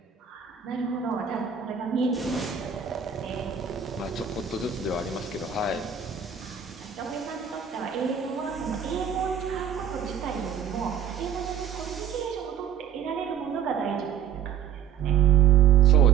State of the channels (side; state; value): left; quieter; 8.4 dB